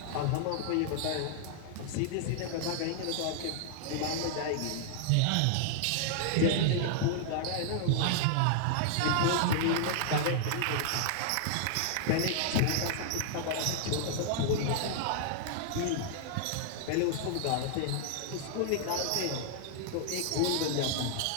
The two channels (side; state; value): both; different; correlation -0.01